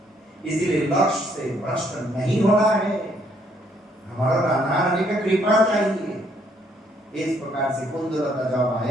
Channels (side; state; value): both; normal; correlation 0.68